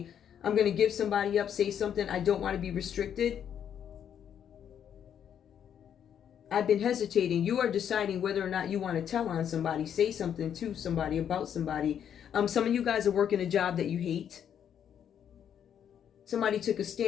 I'm going to give somebody up, say something. I don't want to be restricted. I've been hesitating. You are deciding whether or not you want to tell on somebody, say something to somebody, about somebody. Some of you guys are working a job that you hate. Somebody took a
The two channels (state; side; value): quieter; right; 8.9 dB